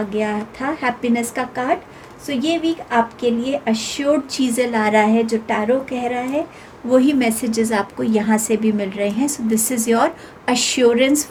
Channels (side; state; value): both; identical; correlation 1.00